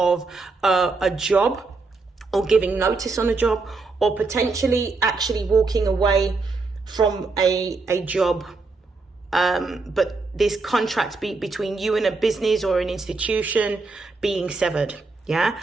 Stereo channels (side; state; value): left; quieter; 3.8 dB